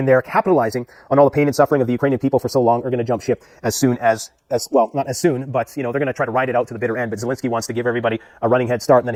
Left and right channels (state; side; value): identical; both; correlation 1.00